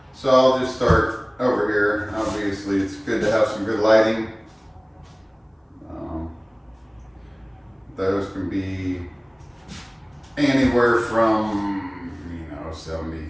So I'll just start over here. Obviously, it's good to have some good lighting. Those can be anywhere from 70,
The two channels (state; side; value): identical; both; correlation 1.00